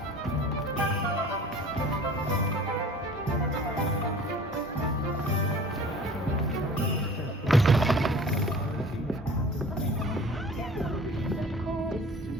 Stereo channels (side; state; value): both; normal; correlation 0.45